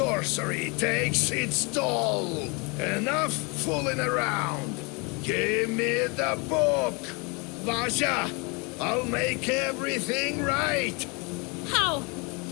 takes its toll. Enough fooling around. Give me the book. Vasha, I'll make everything right. How?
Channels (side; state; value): right; quieter; 30.5 dB